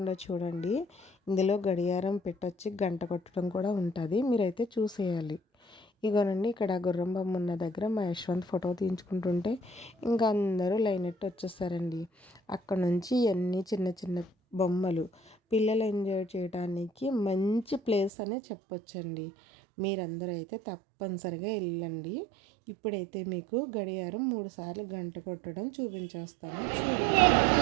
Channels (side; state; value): left; drops out; at 18.1 s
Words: చూడండి. ఇందులో గడియారం పెట్టొచ్చి గంట కొట్టడం కూడా ఉంటుంది, మీరైతే చూసేయాలి. ఇగోనండి, ఇక్కడ గుర్రం బొమ్మ ఉన్న దగ్గర మా యశ్వంత్ ఫోటో తీయించుకుంటుంటే ఇంకా అందరూ లైన్ ఎట్టి వచ్చేస్తారండి. అక్కడ నుంచి అన్నీ చిన్న చిన్న బొమ్మలు పిల్లలు ఎంజాయ్ చేయడానికి మంచి ప్లేస్ అనే చెప్పొచ్చండి. మీరందరూ అయితే తప్పనిసరిగా వెళ్ళండి. ఇప్పుడైతే మీకు గడియారం 3 సార్లు గంట కొట్టడం చూపించేస్తాను, చూడండి.